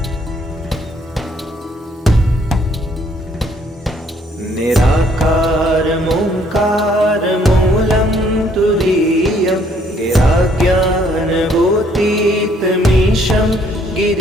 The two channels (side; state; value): both; normal; correlation 0.65